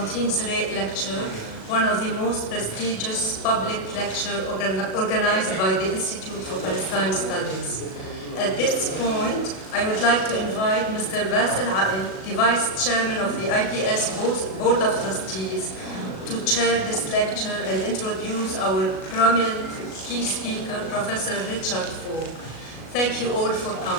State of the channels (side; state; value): right; late; 37 ms